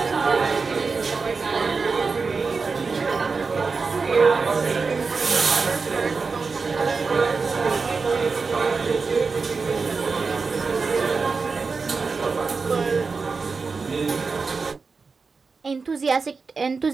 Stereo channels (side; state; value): left; quieter; 4.6 dB